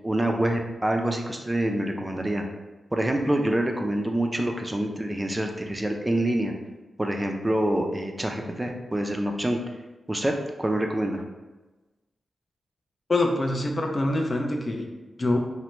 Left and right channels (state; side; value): normal; both; correlation 0.92